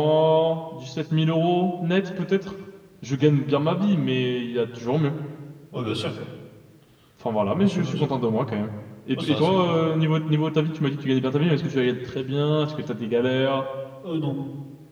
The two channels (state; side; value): identical; both; correlation 1.00